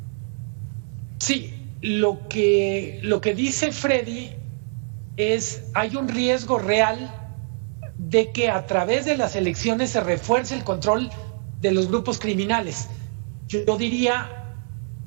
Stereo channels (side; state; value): left; silent; 62 dB below the other